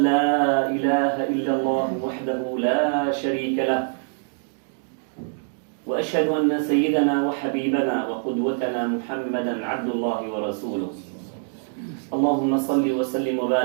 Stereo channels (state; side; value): silent; left; digital silence